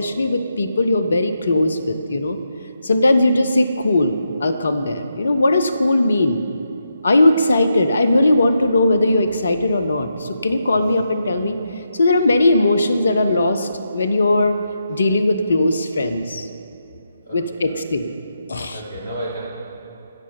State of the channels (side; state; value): both; inverted; correlation -0.84